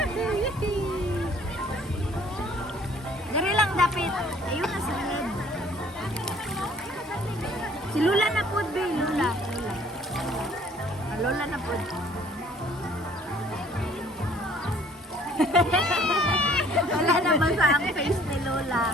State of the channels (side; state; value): both; normal; correlation 0.57